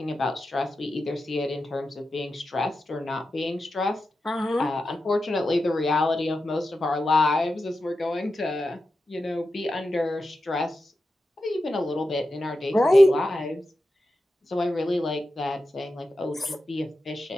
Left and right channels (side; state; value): both; normal; correlation 0.91